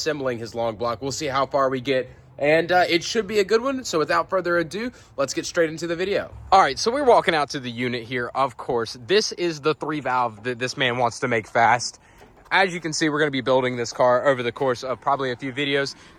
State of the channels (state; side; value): identical; both; correlation 1.00